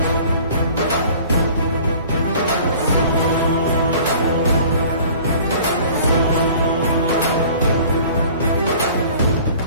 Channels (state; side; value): inverted; both; correlation -0.48